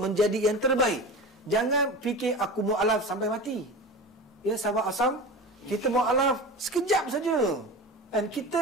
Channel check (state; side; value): normal; both; correlation 0.31